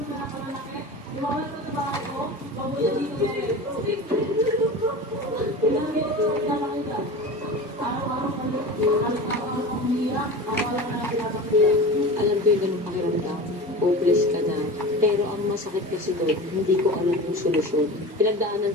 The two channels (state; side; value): normal; both; correlation 0.32